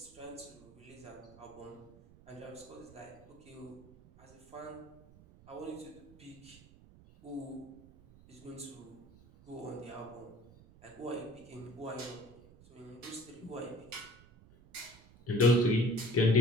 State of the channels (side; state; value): right; noise; rumble, 22 dB below the sound